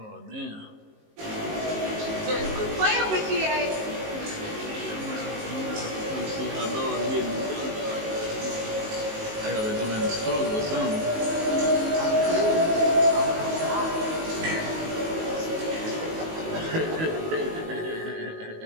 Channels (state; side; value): late; left; 19 ms